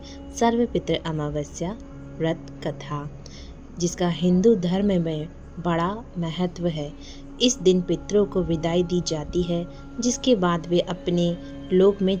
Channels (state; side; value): identical; both; correlation 1.00